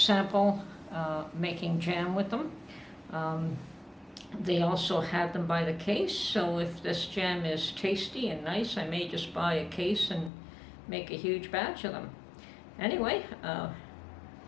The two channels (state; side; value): drops out; right; at 10.3 s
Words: making jam with them. They also had them by the case, so if this jam is tasty and nice, I may just buy a case and make a huge batch of them. Anyway,